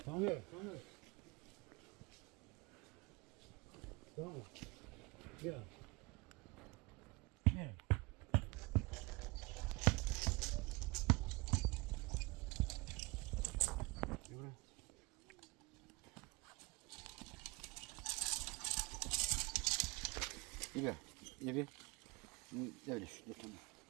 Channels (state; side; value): quieter; left; 26.3 dB